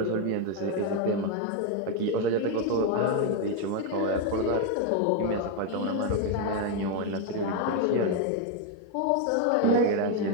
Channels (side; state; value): both; different; correlation 0.01